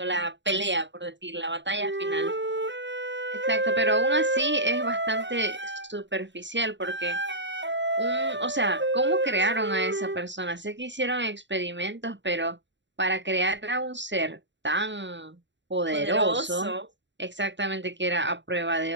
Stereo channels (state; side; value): late; left; 0.53 ms